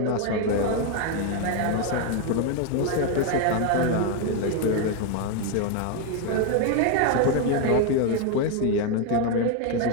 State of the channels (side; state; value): both; different; correlation 0.01